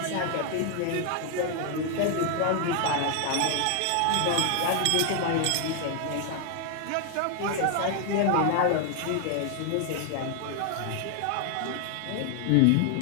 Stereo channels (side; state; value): both; different; correlation 0.00